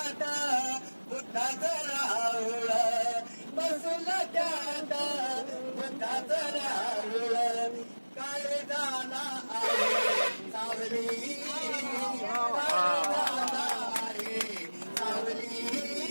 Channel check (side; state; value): both; inverted; correlation -1.00